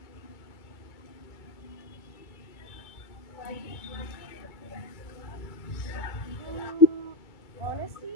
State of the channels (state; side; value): late; right; 2.3 ms